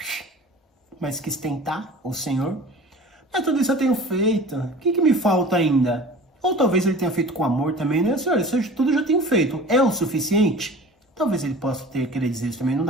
Mas quis tentar o Senhor. Mas tudo isso eu tenho feito. O que me falta ainda? Ou talvez ele tenha feito com amor também, né? Senhor, isso tudo eu já tenho feito. É o suficiente? Talvez ele possa querer dizer isso também. Não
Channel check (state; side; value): normal; both; correlation 0.41